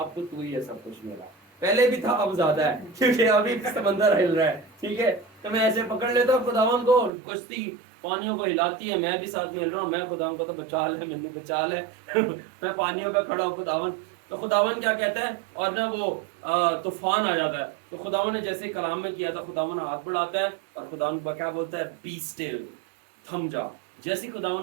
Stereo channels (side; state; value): left; drops out; at 7.1 s